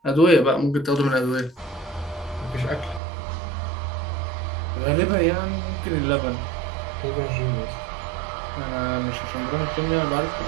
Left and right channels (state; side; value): drops out; left; at 3.0 s